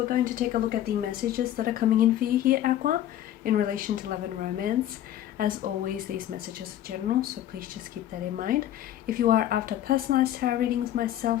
going to take a look at the messages that are coming in for you here, Aqua, in relation to love and romance. As always, these messages are general, so please just keep that in mind. If you are after personalized tarot readings myself,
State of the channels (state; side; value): quieter; right; 12.2 dB